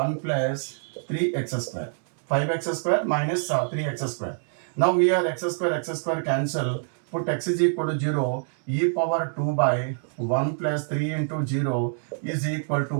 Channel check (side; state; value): left; silent; digital silence